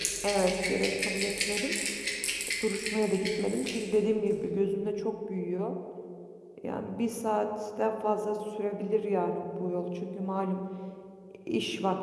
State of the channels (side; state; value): both; identical; correlation 1.00